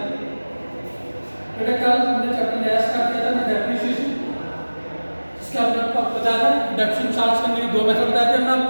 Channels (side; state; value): both; inverted; correlation -1.00